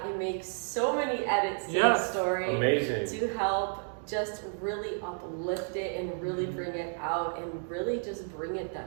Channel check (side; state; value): left; silent; 57 dB below the other